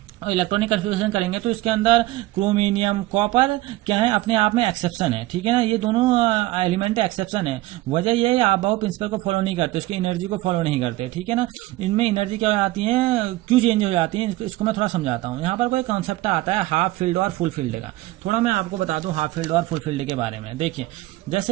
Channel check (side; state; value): left; quieter; 17.9 dB